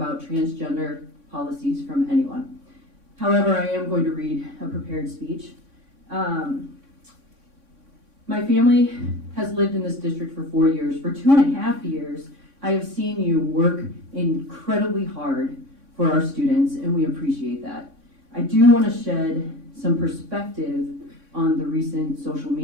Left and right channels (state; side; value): late; left; 3.6 ms